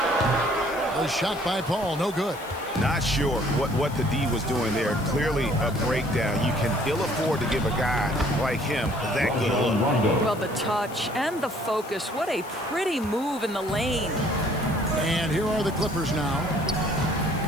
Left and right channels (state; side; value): noise; left; hiss, 19 dB below the sound